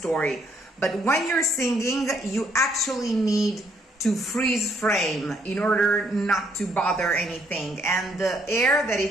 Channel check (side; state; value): both; normal; correlation 0.69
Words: But when you're singing, you actually need to freeze frame in order not to bother anything. And the air that